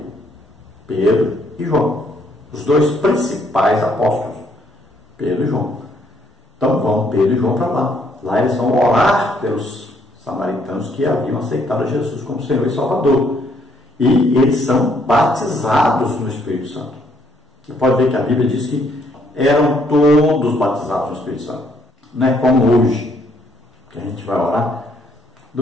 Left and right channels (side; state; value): both; normal; correlation 0.69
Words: Pedro e João, os dois principais apóstolos, Pedro e João. Então vão Pedro e João para lá. Lá eles vão orar pelos samaritanos que haviam aceitado Jesus como Senhor e Salvador. E eles são batizados no Espírito Santo. Você pode ver que a Bíblia diz que eram todos batizados no Espírito Santo. Não é como hoje, que a gente vai orar,